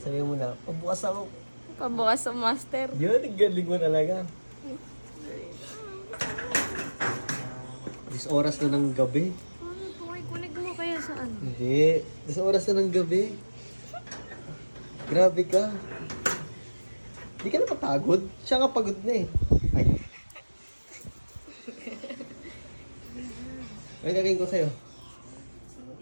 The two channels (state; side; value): inverted; both; correlation -1.00